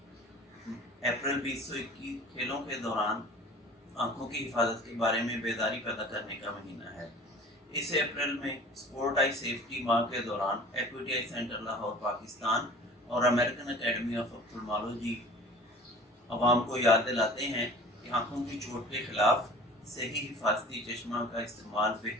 अप्रैल 2021 खेलों के दौरान आंखों की हिफाजत के बारे में बेदारी पैदा करने का महीना है। इस अप्रैल में स्पोर्ट आई सेफ्टी माह के दौरान equity eye centre Lahore Pakistan और अमेरिकन एकेडमी ऑफ ऑप्थेल्मोलॉजी अवाम को याद दिलाते हैं कि आंखों की चोट के खिलाफ सही हिफाजती चश्मा का इस्तेमाल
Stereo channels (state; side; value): normal; both; correlation 0.44